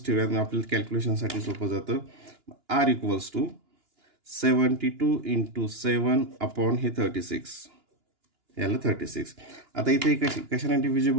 ठेवूयात, आपल्याला कॅल्क्युलेशनसाठी सोपं जातं. r equals to 72 into 7 upon हे 36 याला 36. आता इथे कशाने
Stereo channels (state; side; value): late; left; 2.9 ms